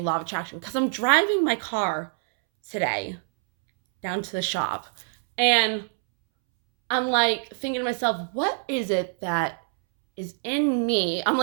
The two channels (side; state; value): left; silent; 62 dB below the other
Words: law of attraction, because I'm driving my car today down to the shop, and I'm like thinking to myself, what is it that is in me? I'm